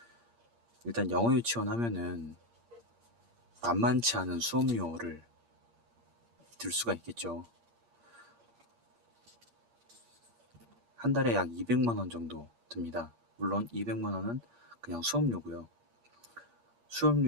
일단 영어 유치원 하면은 만만치 않은 수업료를 들 수가 있겠죠. 한 달에 약 200만 원 정도 듭니다. 물론 200만 원은 그냥 수업료고요.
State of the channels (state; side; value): late; left; 8.6 ms